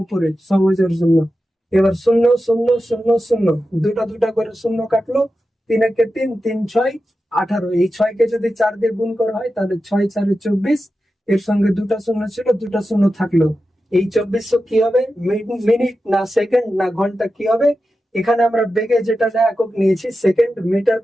উপরে সহজের জন্য। এবার 0 0 0 0, দুটা দুটা করে শূন্য কাটলো। 3 একে 3, 3 6 18। এই 6কে যদি 4 দিয়ে গুণ করা হয় তাহলে 6 4 24। এর সঙ্গে দুটা শূন্য ছিল, দুটা শূন্য থাকলো। এই 2400 কি হবে? মিনিট না সেকেন্ড না ঘন্টা কি হবে? এখানে আমরা বেগে যেটা একক নিয়েছি সেকেন্ড, মিটার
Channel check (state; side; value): normal; both; correlation 0.91